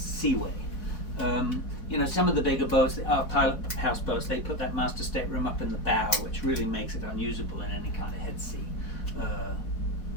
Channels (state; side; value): late; right; 4.1 ms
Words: You know, some of the bigger boats, our pilot house boats, they put that master stateroom up in the bow, which really makes it unusable in any kind of head sea.